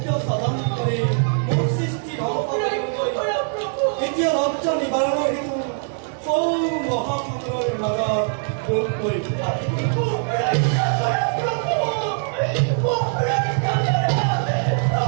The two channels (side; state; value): left; silent; 64 dB below the other